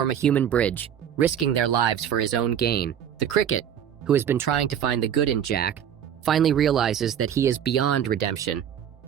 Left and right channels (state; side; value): quieter; left; 9.3 dB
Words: a human bridge, risking their lives for his own gain. The cricket, who has been trying to find the good in Jack, finally realizes that he is beyond redemption,